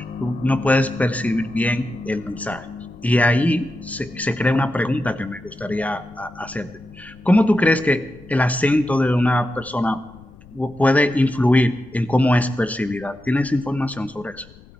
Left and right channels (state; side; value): noise; left; rumble, 24 dB below the sound